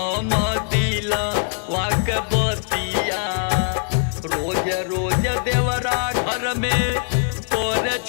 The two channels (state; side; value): silent; right; digital silence